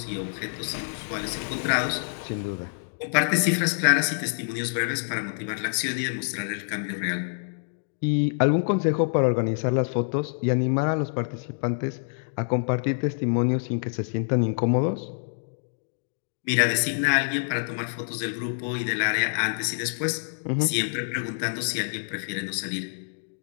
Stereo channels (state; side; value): silent; right; digital silence